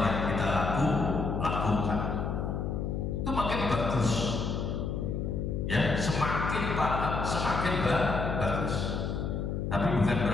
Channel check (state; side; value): noise; left; hum, 2 dB below the sound